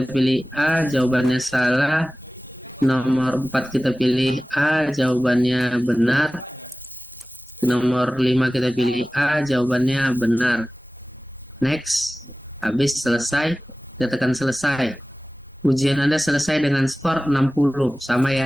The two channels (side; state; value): both; normal; correlation 0.97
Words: pilih A, jawabannya salah. Nomor 4 kita pilih A, jawabannya benar. Nomor 5 kita pilih A, jawabannya benar. Next, habis selesai, kita tekan selesai. Ujian Anda selesai dengan skor 60. Sama ya,